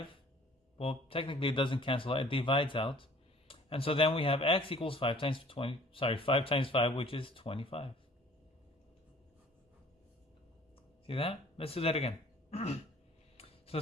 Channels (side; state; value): both; normal; correlation 0.52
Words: Well, technically it doesn't cancel out, it divides out. And so then we have x equals 5 times 5, which is 25. See that? Let's do that again. So